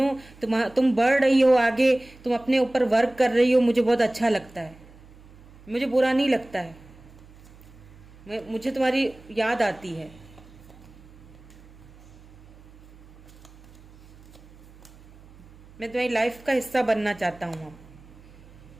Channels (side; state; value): right; noise; hum, 23 dB below the sound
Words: तुम बढ़ रही हो आगे, तुम अपने ऊपर वर्क कर रही हो, मुझे बहुत अच्छा लगता है। मुझे बुरा नहीं लगता है, मुझे तुम्हारी याद आती है। मैं तुम्हारी लाइफ का हिस्सा बनना चाहता हूँ अब।